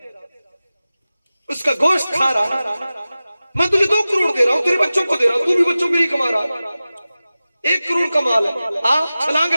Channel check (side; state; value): both; inverted; correlation -0.96